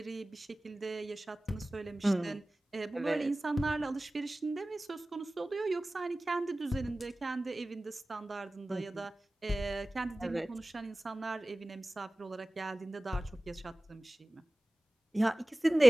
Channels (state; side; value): normal; both; correlation 0.98